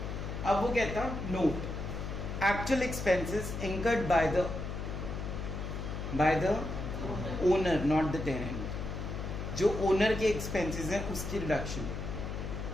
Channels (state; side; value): noise; left; hum, 5 dB below the sound